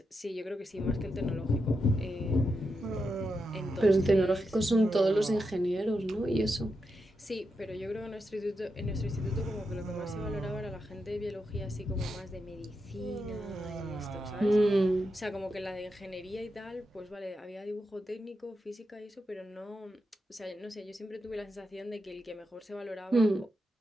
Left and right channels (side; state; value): both; normal; correlation 0.86